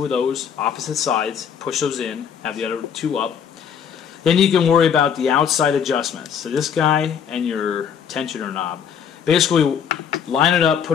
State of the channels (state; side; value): quieter; right; 7.8 dB